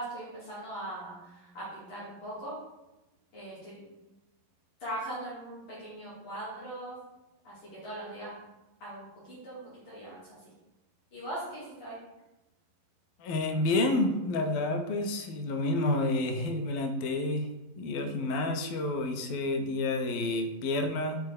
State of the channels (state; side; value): late; right; 12 ms